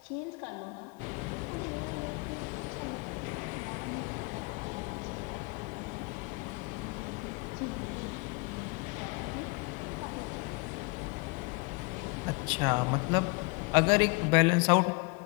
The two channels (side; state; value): right; quieter; 29.4 dB